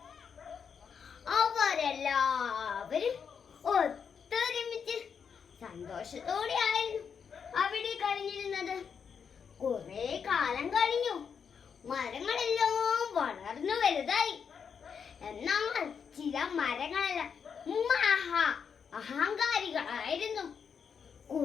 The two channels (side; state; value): right; quieter; 6.7 dB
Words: അവരെല്ലാവരും ഒത്തൊരുമിച്ച് സന്തോഷത്തോടെയായിരുന്നു അവിടെ കഴിഞ്ഞിരുന്നത്. കുറെ കാലം കഴിഞ്ഞു, മരങ്ങളെല്ലാം വളർന്നു വലുതായി. എന്നാൽ ചില മരങ്ങളെല്ലാം അഹങ്കാരികളായിരുന്നു.